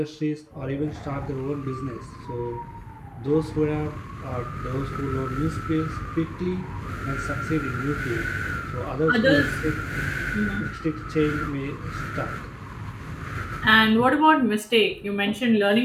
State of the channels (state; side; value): identical; both; correlation 1.00